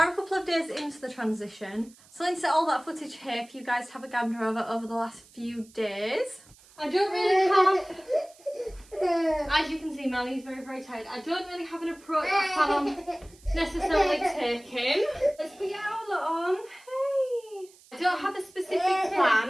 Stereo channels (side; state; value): right; noise; hiss, 26 dB below the sound